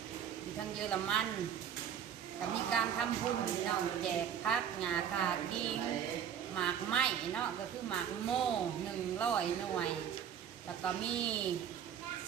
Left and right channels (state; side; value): quieter; left; 8.9 dB